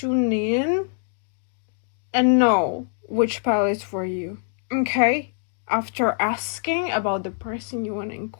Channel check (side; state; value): right; silent; 63 dB below the other